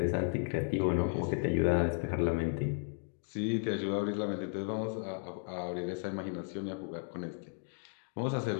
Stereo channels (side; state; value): right; silent; 55 dB below the other